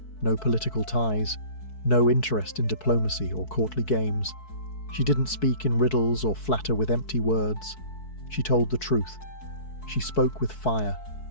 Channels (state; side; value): late; right; 4.6 ms